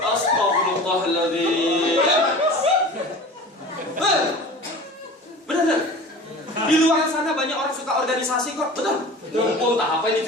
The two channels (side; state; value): both; normal; correlation 0.38